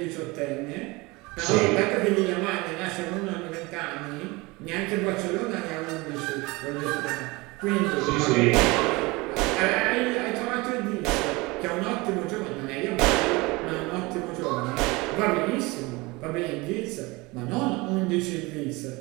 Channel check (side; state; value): left; quieter; 23.7 dB